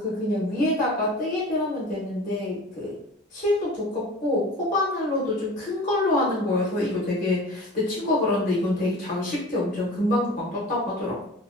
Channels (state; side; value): normal; both; correlation 0.39